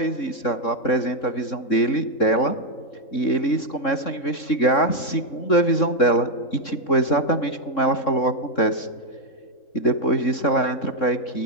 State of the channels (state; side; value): late; right; 3.6 ms